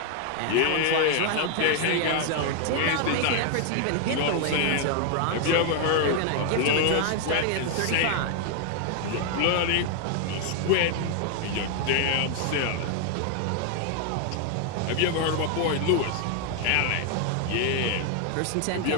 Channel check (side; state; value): both; different; correlation 0.00